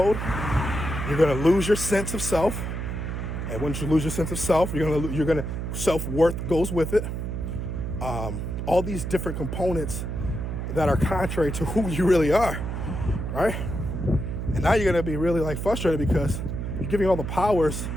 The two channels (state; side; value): noise; right; hum, 4 dB below the sound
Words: You're going to lose your sense of self. And once you lose your sense of self, you're going to self-worth goes with it. All these different components that are contrary to who you really are, right? And now you're going to be really like frustrated because you're giving all the powers